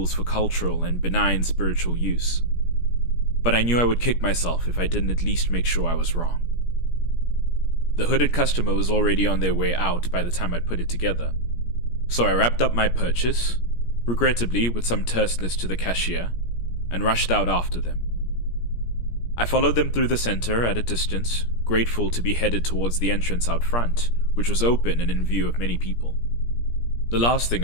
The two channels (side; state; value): right; late; 17 ms